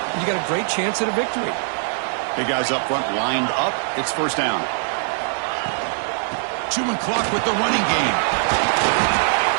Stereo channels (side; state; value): left; silent; digital silence